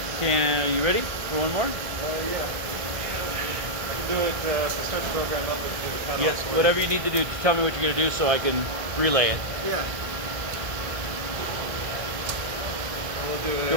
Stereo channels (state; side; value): late; left; 1.7 ms